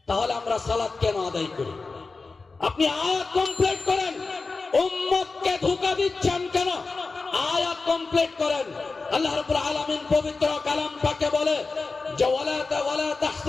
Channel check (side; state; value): right; quieter; 4.0 dB